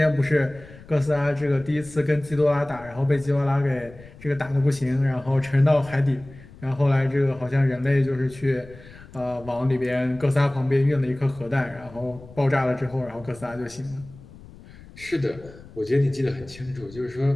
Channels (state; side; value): noise; left; rumble, 20 dB below the sound